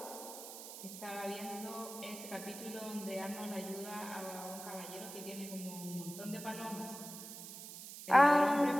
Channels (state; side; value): noise; right; hiss, 11 dB below the sound